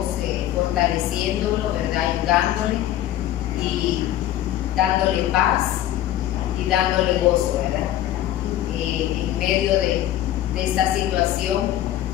fortaleciéndolo, ¿verdad? Ayudándole y dándole paz y dándole gozo, ¿verdad? En medio de esta situación,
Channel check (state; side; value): quieter; right; 12.9 dB